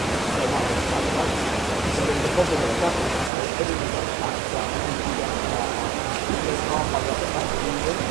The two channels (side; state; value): left; drops out; at 3.3 s